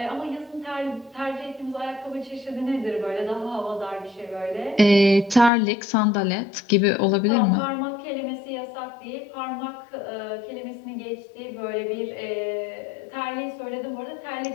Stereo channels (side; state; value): right; drops out; at 5.5 s